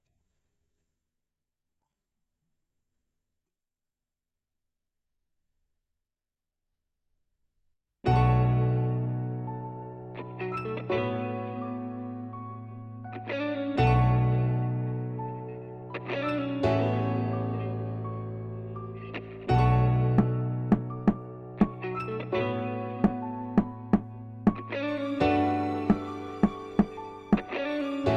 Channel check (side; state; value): both; identical; correlation 1.00